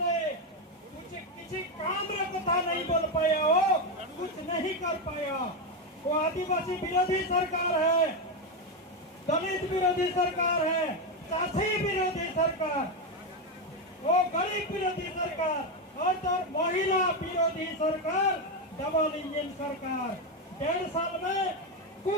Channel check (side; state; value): both; normal; correlation 0.09